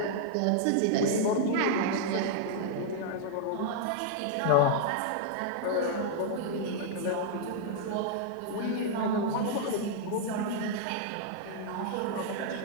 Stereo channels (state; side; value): different; both; correlation -0.01